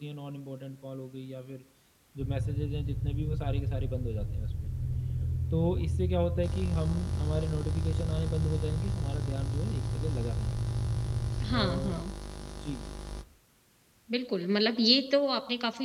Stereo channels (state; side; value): identical; both; correlation 1.00